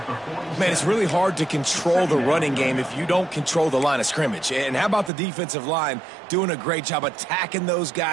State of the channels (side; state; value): left; drops out; at 5.1 s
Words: Man, it's really hard to control the running game if you don't control the line of scrimmage. And how about the defensive line doing a great job attacking those